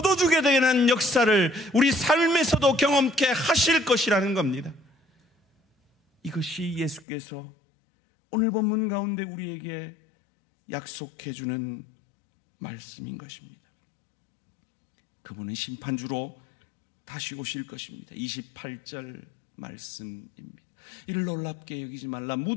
되는 역사를 우리 삶에서도 경험케 하실 것이라는 겁니다. 이것이 예수께서 오늘 본문 가운데 우리에게 약속해 주는 말씀인 것입니다. 그분은 심판주로 다시 오실 것입니다. 28절 말씀입니다. 이를 놀랍게 여기지 말라.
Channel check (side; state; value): right; drops out; at 7.1 s